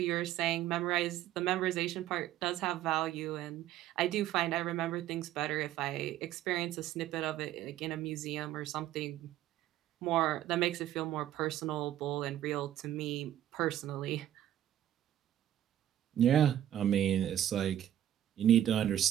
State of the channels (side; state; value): left; quieter; 12.0 dB